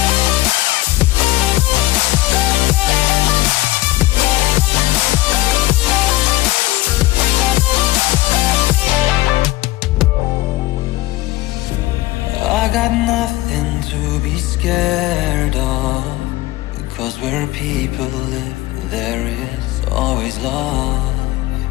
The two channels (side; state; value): right; quieter; 17.8 dB